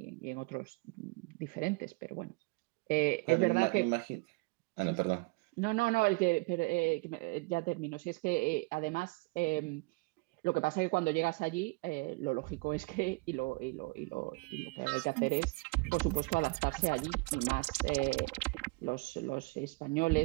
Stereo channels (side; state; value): left; quieter; 27.1 dB